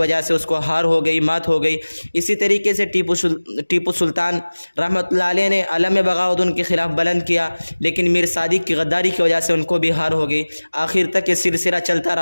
سے اس کو ہار ہو گئی، مات ہو گئی۔ اسی طریقے سے ٹیپو سلطان رحمۃ اللہ علیہ نے علم بغاوت ان کے خلاف بلند کیا، لیکن میر صادق کی غداری کی وجہ سے ان کو بھی ہار ہو گئی۔ آخر تک یہ سلسلہ چلتا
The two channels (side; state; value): both; inverted; correlation -1.00